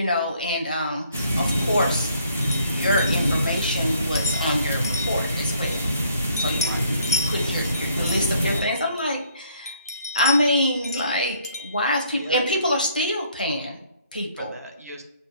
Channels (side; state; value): both; inverted; correlation -0.63